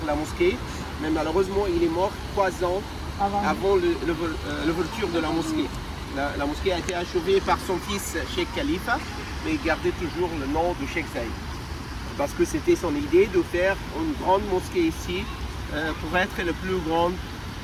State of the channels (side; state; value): both; identical; correlation 1.00